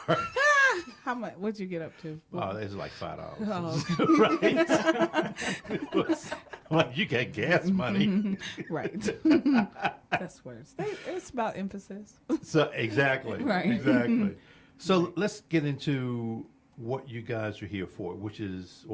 How much? What'd you get up to? Oh, it's like $5. Oh, Right? I'm like, you got gas money. right. That's words. It's about emphasis. So exactly. Right. Exactly. So let's get into what you guys are here for, which is,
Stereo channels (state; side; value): identical; both; correlation 1.00